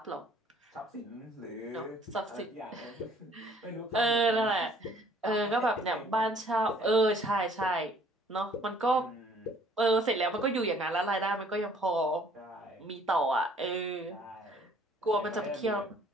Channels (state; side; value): normal; both; correlation 0.58